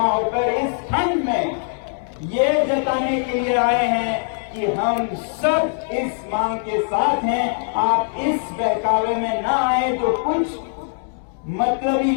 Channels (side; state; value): right; silent; digital silence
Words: होकर इस ठंड में ये जताने के लिए आए हैं कि हम सब इस मांग के साथ हैं। आप इस बहकावे में ना आए तो कुछ मतलबी